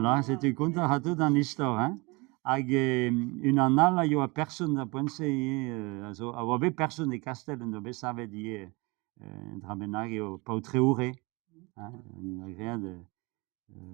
c'est un conte à tout dans l'histoire, hein. Hag une annale, il y a personne à penser, also, a obe personne de castel, no be savet die, drabenag eo pautreure, hein, une agréa de,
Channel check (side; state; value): left; quieter; 26.4 dB